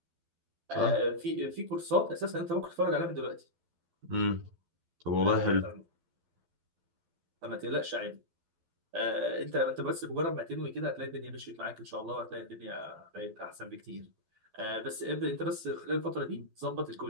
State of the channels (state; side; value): late; left; 12 ms